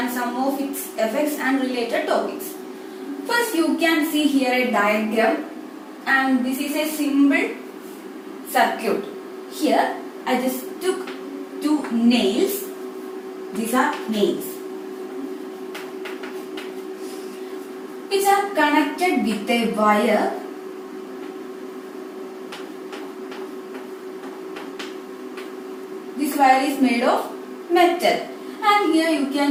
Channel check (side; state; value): both; identical; correlation 1.00